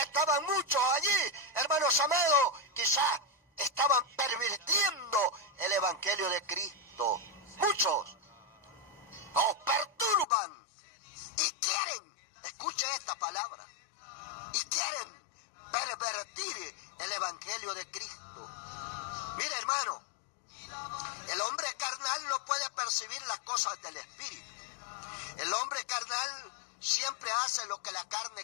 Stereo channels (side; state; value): right; drops out; at 10.2 s